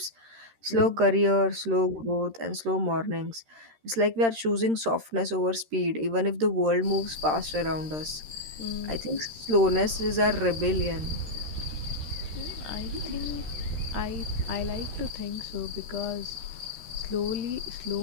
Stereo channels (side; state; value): left; late; 13 ms